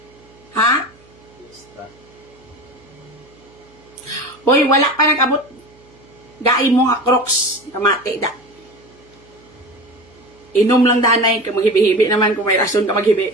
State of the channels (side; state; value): right; noise; hum, 28 dB below the sound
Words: Ha? Fiesta. Hoy, wala pa nag-abot. Gai mo nga crocs, kamate da. Inom lang danay, ka maghibi-hibi naman kung may rason ka maghibi.